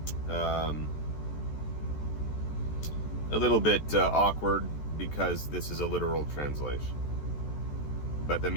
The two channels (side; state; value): right; late; 14 ms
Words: a little bit awkward because this is a literal translation. But the